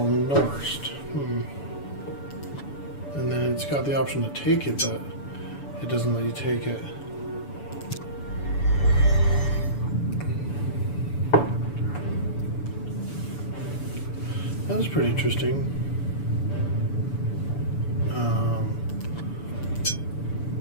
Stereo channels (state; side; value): late; right; 7.0 ms